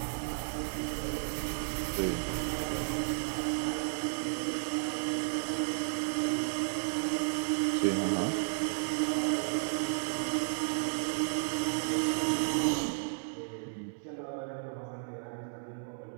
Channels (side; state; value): left; silent; digital silence